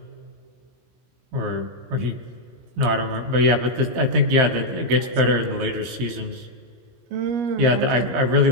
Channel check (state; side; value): late; left; 17 ms